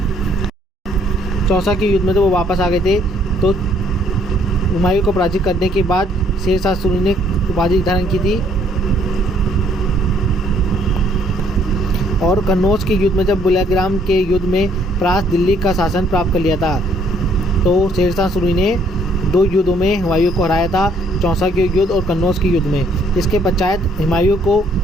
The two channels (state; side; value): normal; both; correlation 0.64